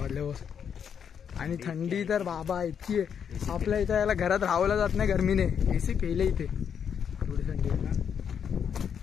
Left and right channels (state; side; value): quieter; right; 7.7 dB